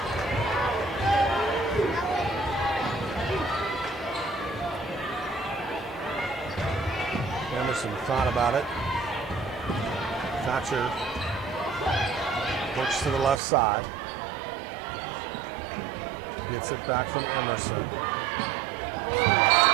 thought about it. Thatcher works to the left side. Gets it back from Emerson.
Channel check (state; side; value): drops out; left; at 13.4 s